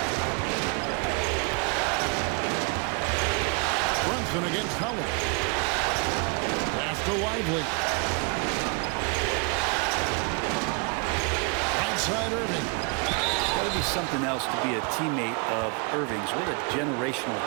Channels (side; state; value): left; quieter; 33.7 dB